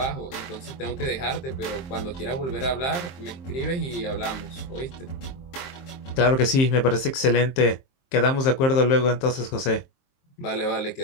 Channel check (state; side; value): late; right; 23 ms